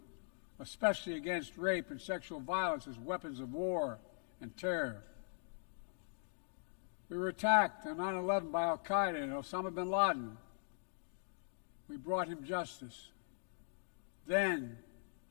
especially against rape and sexual violence as weapons of war and terror. We were attacked on 9/11 by al-Qaeda and Osama bin Laden. We brought him justice. Then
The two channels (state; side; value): silent; right; digital silence